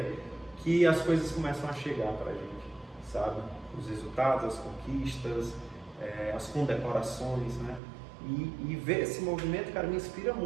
que as coisas começam a chegar pra gente, sabe? Os resultados, as conquistas, as condecorações, né? E ver esse movimento, cara, me inspira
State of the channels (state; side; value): drops out; left; at 7.8 s